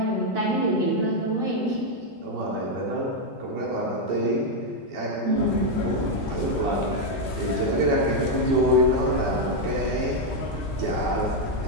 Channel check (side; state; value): both; normal; correlation 0.01